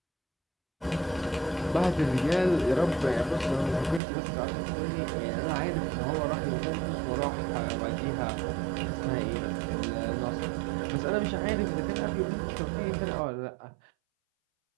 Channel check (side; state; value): left; drops out; at 4.0 s